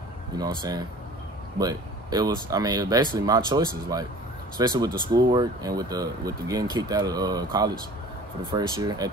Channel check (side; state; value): both; normal; correlation 0.45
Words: You know what I'm saying? But it was basically my choices, like, especially with the schoolwork and with the getting kicked out of college for the first year at